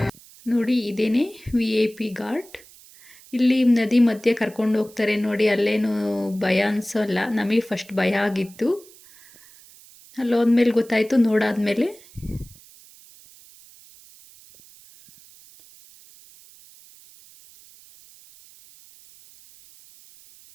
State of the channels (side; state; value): right; noise; hiss, 24 dB below the sound